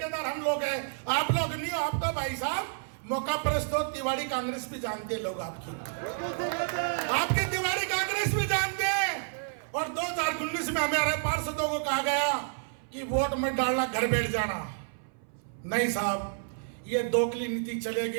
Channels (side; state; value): left; silent; 56 dB below the other